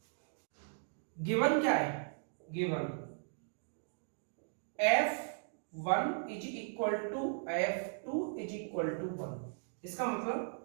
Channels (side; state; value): left; silent; digital silence